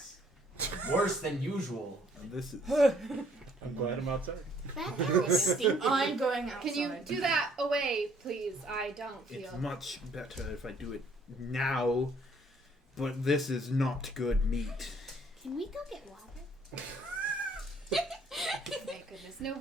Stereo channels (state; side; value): normal; both; correlation 0.62